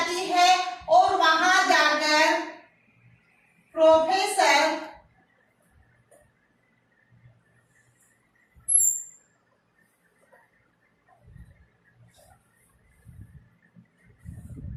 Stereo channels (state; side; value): identical; both; correlation 1.00